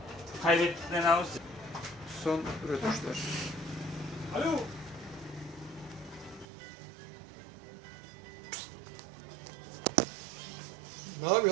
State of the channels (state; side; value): drops out; left; at 6.5 s